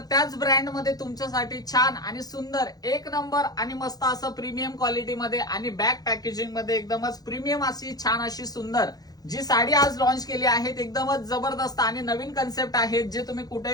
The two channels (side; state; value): right; late; 0.19 ms